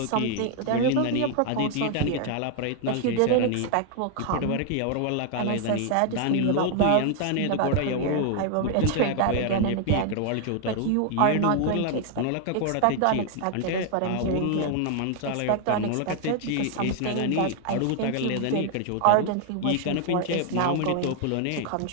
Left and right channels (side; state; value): both; different; correlation 0.00